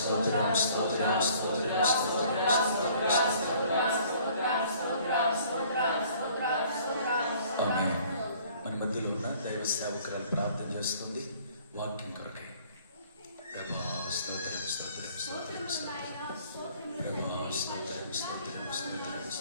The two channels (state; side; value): inverted; both; correlation -0.56